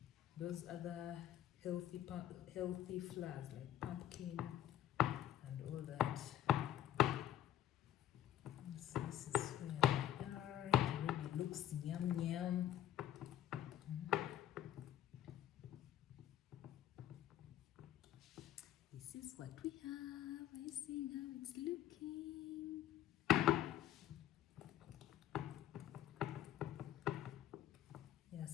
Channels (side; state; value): right; quieter; 11.7 dB